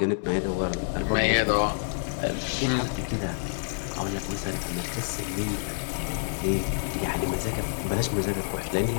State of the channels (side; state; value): right; silent; digital silence